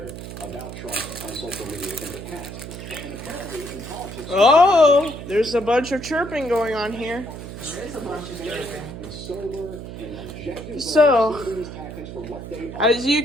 about Trump on social media in the past. And apparently in politics, Oh, there's a bunch of chirping going on here. There is a bunch of chirping. So, as you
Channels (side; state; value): right; noise; hum, 10 dB below the sound